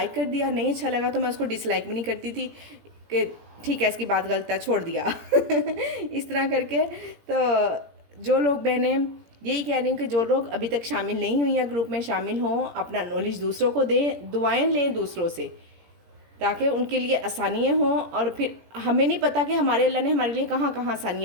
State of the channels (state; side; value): late; left; 17 ms